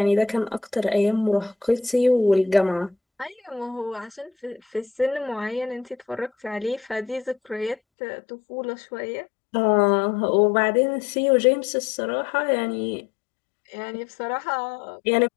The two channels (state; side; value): drops out; right; at 7.8 s